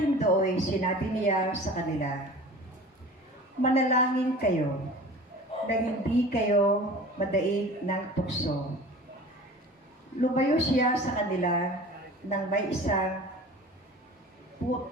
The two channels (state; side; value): normal; both; correlation 0.40